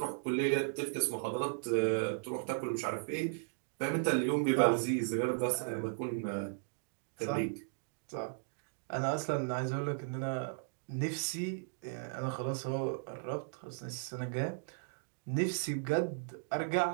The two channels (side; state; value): left; silent; digital silence